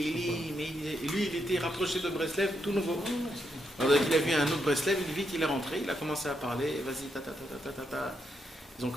et lui, il était rapproché de Breslev, tout nouveau. Alors il a vu un autre Breslev, vite il est rentré, il a commencé à parler, vas-y, ta ta ta ta ta ta. Ils ont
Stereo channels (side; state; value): both; normal; correlation 0.80